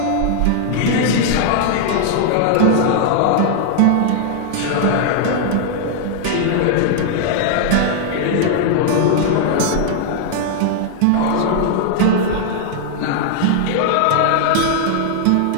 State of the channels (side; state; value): both; different; correlation -0.01